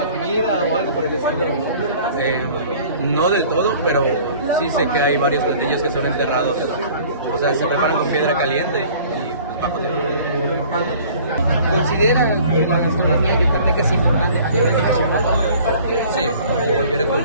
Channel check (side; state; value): both; inverted; correlation -0.50